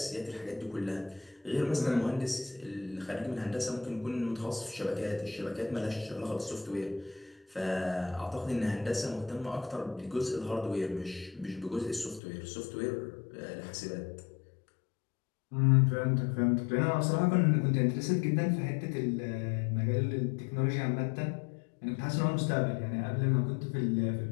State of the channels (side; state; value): right; drops out; at 12.2 s